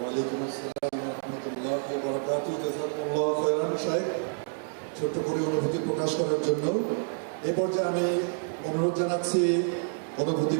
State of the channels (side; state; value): left; silent; 59 dB below the other